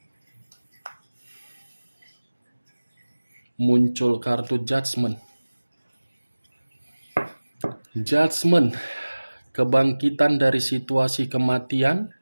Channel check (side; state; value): both; inverted; correlation -1.00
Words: Muncul kartu Judgment. Judgment, kebangkitan dari situasi kematian,